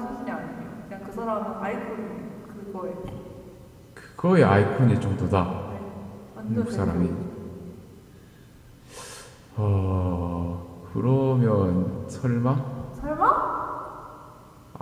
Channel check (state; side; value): identical; both; correlation 1.00